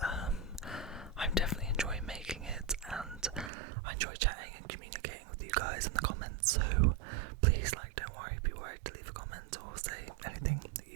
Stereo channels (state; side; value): drops out; left; at 3.5 s